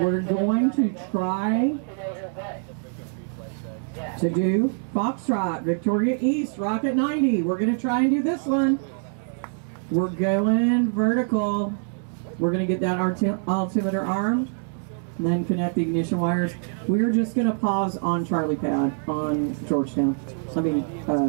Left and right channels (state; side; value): silent; left; 62 dB below the other